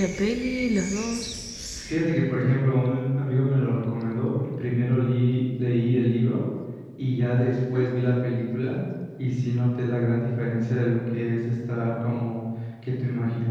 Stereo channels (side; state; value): both; identical; correlation 1.00